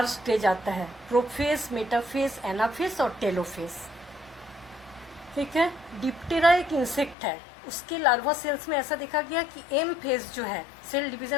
स्टेज आता है, प्रोफेज, मेटाफेज, एनाफेज और टेलोफेज, ठीक है। डिप्टेरा एक इंसेक्ट है, उसके लार्वा सेल्स में ऐसा देखा गया कि एम फेज जो है सेल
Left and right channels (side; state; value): right; drops out; at 7.2 s